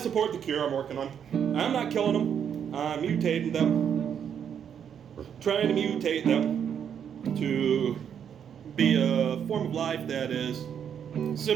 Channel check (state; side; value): quieter; left; 8.3 dB